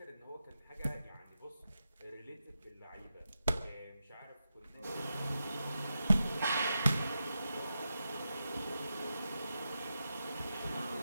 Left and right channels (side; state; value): both; inverted; correlation -0.89